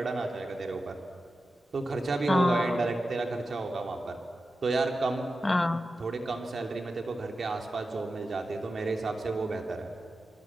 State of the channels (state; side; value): normal; both; correlation 0.92